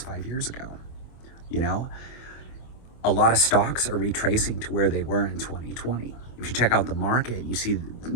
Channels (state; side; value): late; right; 25 ms